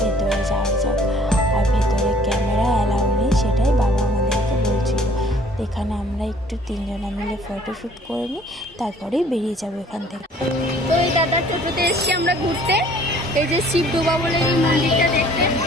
ভেতরে যাওয়া যাক। আর ভেতরে ক্যামেরা অ্যালাউ নেই, সেটাই বাবা আমাদেরকে বলছিল। এখানে আমরা একটু 3 জনা মিলে ফটোশ্যুট করে নিই, তারপরেই বেরিয়ে যাবো এখান থেকে। তো এই দাদার টোটোতে এসছি আমরা ঘুরতে, এই যে শিবডোবা বলে এই মন্দিরটা দেখতে।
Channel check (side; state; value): both; normal; correlation 0.56